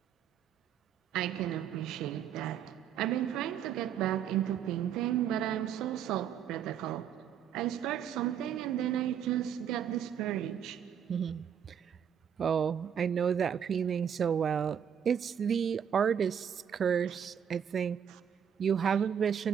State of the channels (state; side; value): quieter; left; 8.5 dB